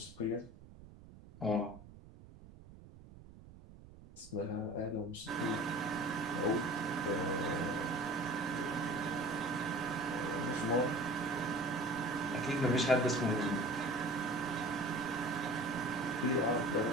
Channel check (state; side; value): noise; right; rumble, 19 dB below the sound